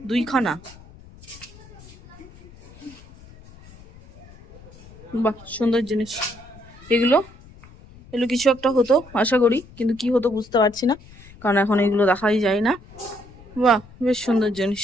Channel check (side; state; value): left; noise; rumble, 22 dB below the sound